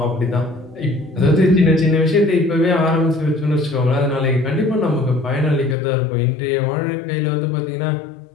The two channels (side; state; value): right; drops out; at 5.8 s